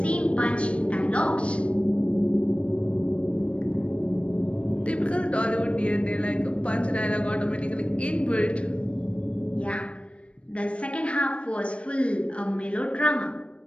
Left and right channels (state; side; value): late; right; 0.061 ms